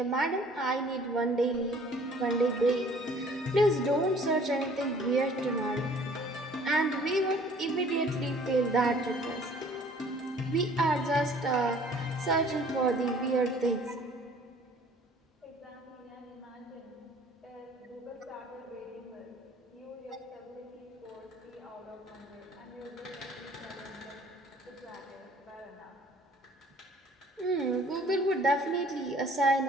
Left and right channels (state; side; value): normal; both; correlation 0.54